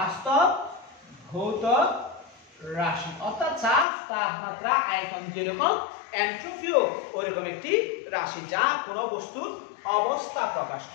অর্থাৎ চাপ তাপমাত্রা আয়তন যেরকম এন্ট্রপিও ওইরকম একটি রাশি যা কোনো বস্তুর অবস্থা প্রকাশ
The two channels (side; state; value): right; drops out; at 3.9 s